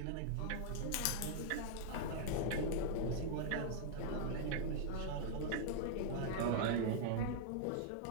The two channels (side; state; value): both; different; correlation -0.01